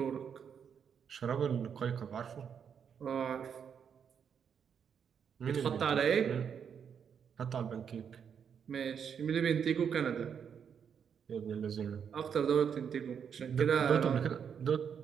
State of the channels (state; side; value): quieter; left; 7.4 dB